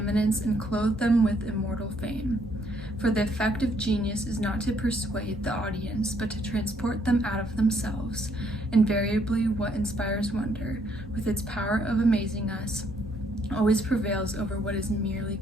and clothed them with immortal fame. For the effect of genius is not to persuade the audience, but to transport them out of themselves. Invariably what inspires wonder, with its power of amazing us, always prevails over what is merely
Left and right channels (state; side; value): normal; both; correlation 0.69